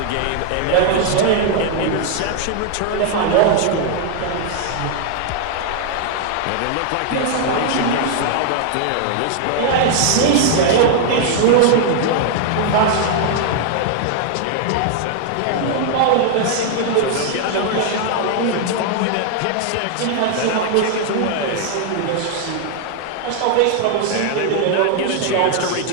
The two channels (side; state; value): both; different; correlation 0.00